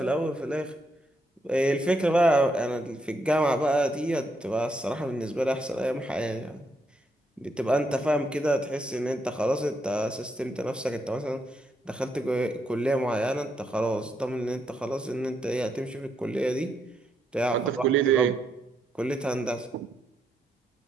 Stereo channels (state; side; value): normal; both; correlation 0.78